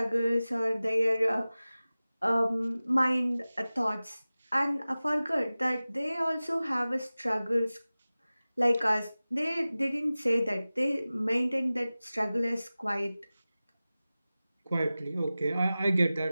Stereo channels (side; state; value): both; inverted; correlation -0.97